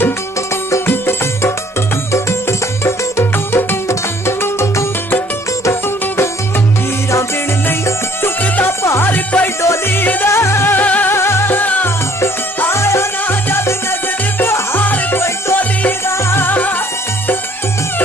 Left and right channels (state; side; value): normal; both; correlation 0.59